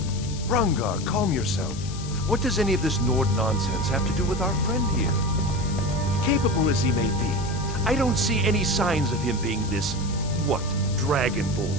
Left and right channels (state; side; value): noise; left; hiss, 14 dB below the sound